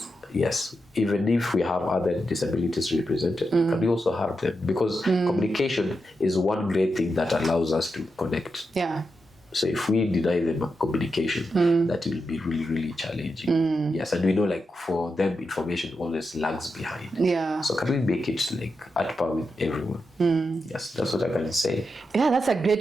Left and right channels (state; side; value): normal; both; correlation 0.87